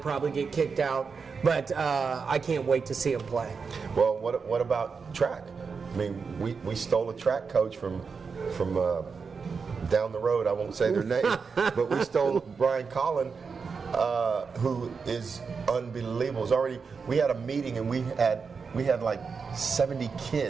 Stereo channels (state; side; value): quieter; left; 5.3 dB